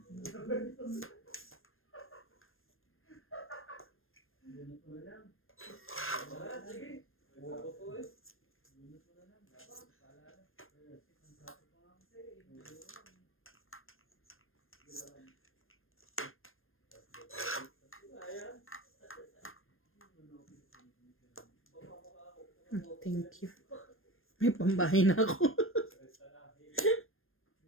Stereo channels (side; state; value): right; late; 0.60 ms